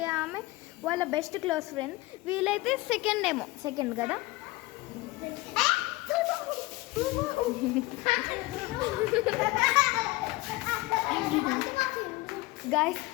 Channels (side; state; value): right; quieter; 21.1 dB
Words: ఆమె వాళ్ళ బెస్ట్ క్లోజ్ ఫ్రెండ్. వీళ్ళైతే సెకండ్ కదా. గాయస్